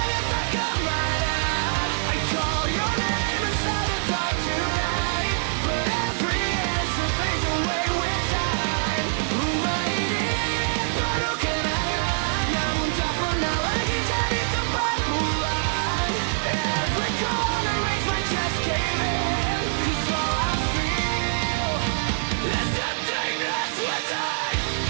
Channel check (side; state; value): left; silent; 62 dB below the other